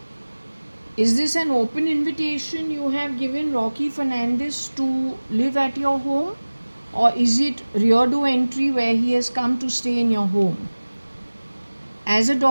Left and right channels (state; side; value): inverted; both; correlation -1.00